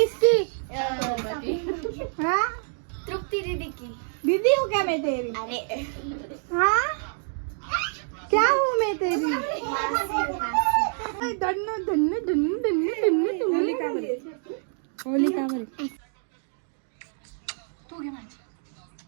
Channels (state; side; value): silent; left; 60 dB below the other